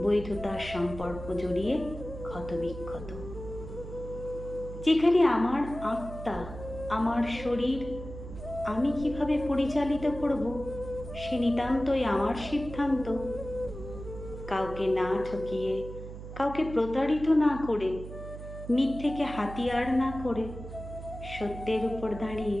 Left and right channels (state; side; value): noise; right; hum, 11 dB below the sound